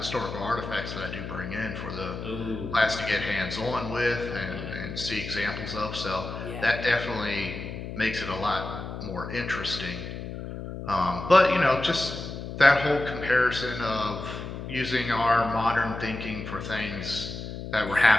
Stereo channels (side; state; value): left; noise; hum, 8 dB below the sound